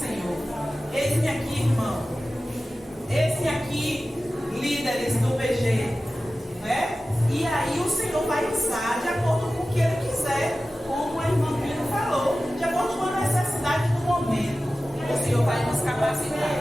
Eis-me aqui, irmão. Eis-me aqui, líderes do PG, né? E aí o Senhor vai usar de acordo com que Ele quiser, como a irmã Pino falou, de acordo com a necessidade do momento. O Senhor vai nos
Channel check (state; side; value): normal; both; correlation 0.95